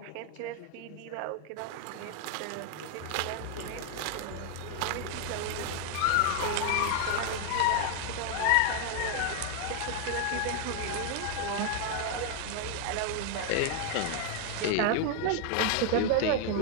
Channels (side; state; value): both; different; correlation 0.00